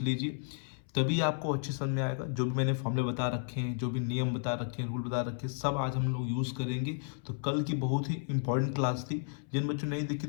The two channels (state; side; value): silent; right; 56 dB below the other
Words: लीजिए, तभी आपको अच्छे समझ में आएगा। जो भी मैंने फॉर्मूले बता रखे हैं, जो भी नियम बता रखे हैं, रूल बता रखे हैं, सब आज हम लोग यूज़ करेंगे। तो कल की बहुत ही इंपॉर्टेंट क्लास थी। जिन बच्चों ने नहीं देखी